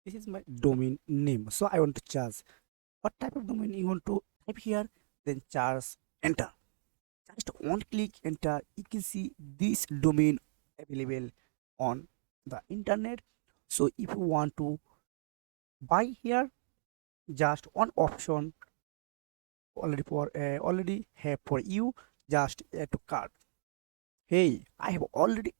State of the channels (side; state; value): left; silent; digital silence